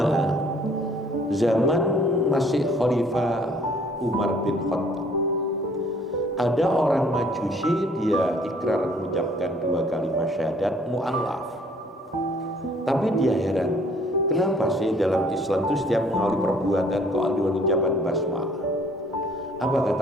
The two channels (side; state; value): both; normal; correlation 0.58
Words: zaman masih Khalifah Umar bin Khattab, ada orang Majusi, dia ikrar mengucapkan 2 kalimat syahadat mu'allaf. Tapi dia heran, kenapa sih dalam Islam itu setiap mengawali perbuatan kok ada ucapan basmalah? Apa